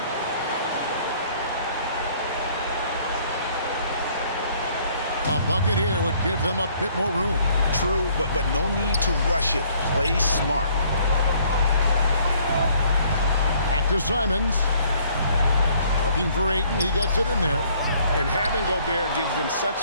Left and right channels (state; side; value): inverted; both; correlation -0.61